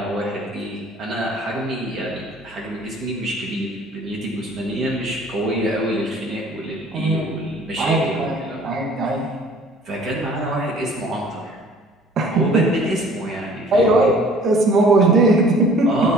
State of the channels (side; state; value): both; normal; correlation 0.52